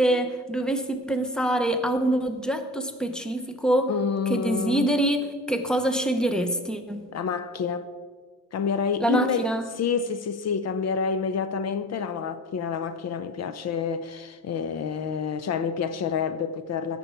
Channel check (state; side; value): normal; both; correlation 0.37